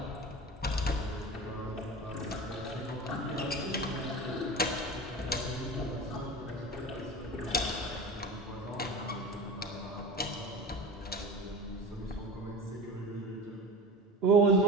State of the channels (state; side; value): normal; both; correlation 0.32